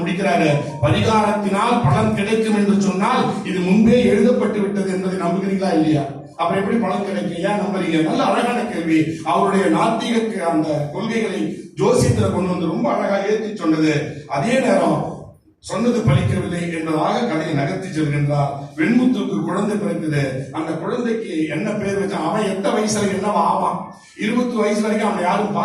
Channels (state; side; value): identical; both; correlation 1.00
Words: முடிக்கிறாரு. பரிகாரத்தினால் பலன் கிடைக்கும் என்று சொன்னால் இது முன்பே எழுதப்பட்டு விட்டது என்பதை நம்புகிறீங்களா இல்லையா? அப்புறம் எப்படி பலன் கிடைக்கும், ஏன் நம்புறீங்க? நல்ல அழகான கேள்வி. அவருடைய நாத்திக அந்த கொள்கைகளை ஜோசியத்துல கொண்டு வந்து ரொம்ப அழகா ஏற்றி சொன்னது. அதே நேரம் சொன்னது பலிக்கவில்லை என்பதாக கதையை நகர்த்தி செல்கின்றார். வெண்முத்துக்கு குழந்தை பிறக்குது. அந்த குழந்தைக்கு என்ன பேர் வச்சா, அவன் எந்த வயசுல என்னவா ஆவான்? 20 வயசு வரைக்கும் அவனை யாரும்